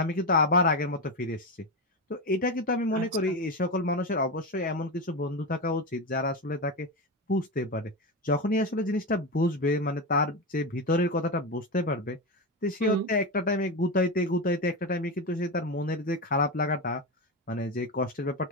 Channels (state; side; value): normal; both; correlation 0.16